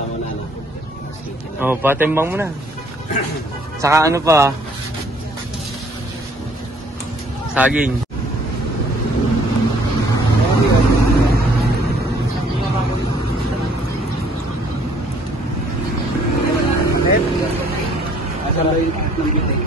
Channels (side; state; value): both; normal; correlation 0.60